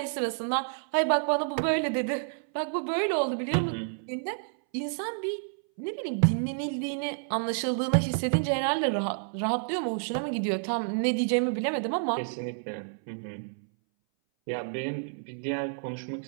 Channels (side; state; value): left; silent; 58 dB below the other